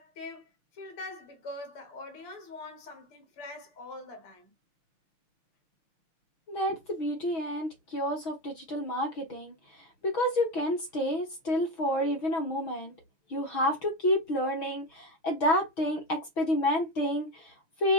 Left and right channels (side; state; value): right; late; 6.2 ms